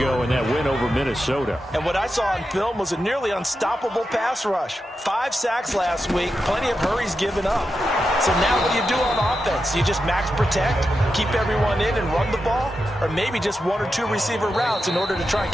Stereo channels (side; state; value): both; normal; correlation 0.89